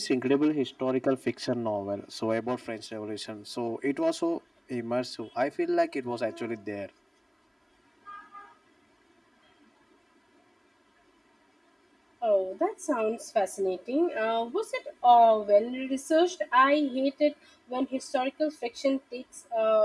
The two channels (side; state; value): both; identical; correlation 1.00